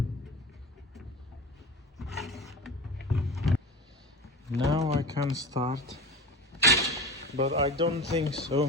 Now I can start, but I don't think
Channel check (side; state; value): both; normal; correlation 0.31